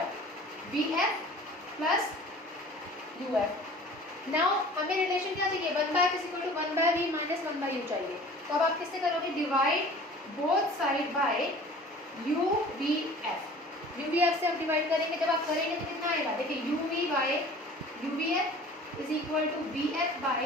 B F plus U F. Now हमें रिलेशन क्या चाहिए, 1/f is equal to 1/v minus 1/u चाहिए। तो अब आप किससे करोगे, divide both side by U V F, U V F से आप डिवाइड करेंगे। जब आप करेंगे तो कितना आएगा, देखिए U V by U V F is equal to B F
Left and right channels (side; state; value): both; normal; correlation 0.45